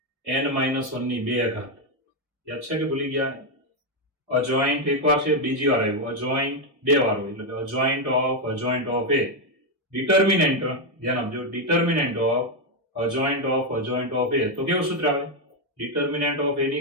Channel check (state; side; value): late; left; 1.7 ms